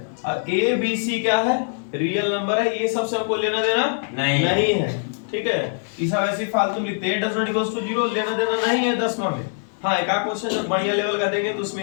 और a b c क्या है? रियल नंबर है। ये सबसे हमको लेना देना नहीं है, ठीक है। ये सब ऐसे फालतू लिखते हैं, डज नॉट इक्वल्स टू 0, लेना देना नहीं है 10वां में। हाँ, एक आध क्वेश्चन जब बढ़िया लेवल का देंगे तो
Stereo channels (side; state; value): right; silent; digital silence